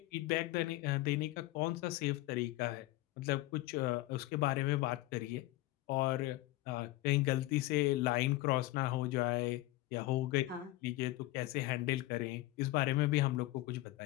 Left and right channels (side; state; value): right; quieter; 17.9 dB